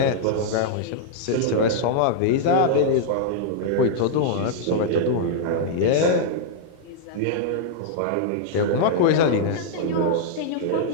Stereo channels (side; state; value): both; different; correlation -0.01